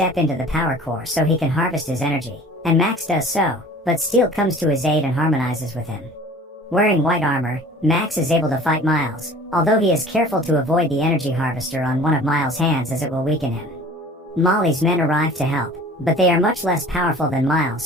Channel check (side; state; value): both; normal; correlation 0.45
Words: into the power core so he can harvest his energy, and Max does so, but Steel comes to his aid and harmonizes with him. Wearing white armor, Max is able to fight Miles, although he is careful to avoid the energy harvester on one of Miles' hands as it will weaken him. Molly's men arrive to help, but they are much less powerful than Miles,